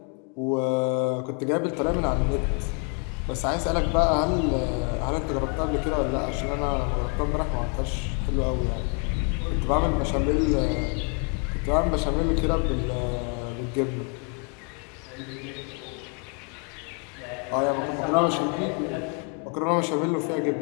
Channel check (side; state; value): right; quieter; 37.7 dB